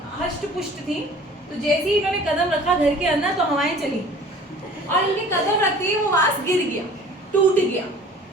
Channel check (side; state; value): both; normal; correlation 0.47